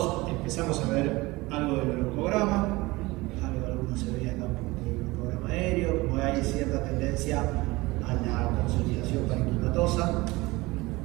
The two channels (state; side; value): quieter; left; 21.6 dB